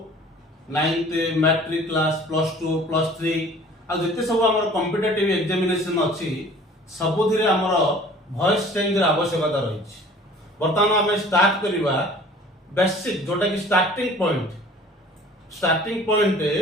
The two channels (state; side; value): normal; both; correlation 0.48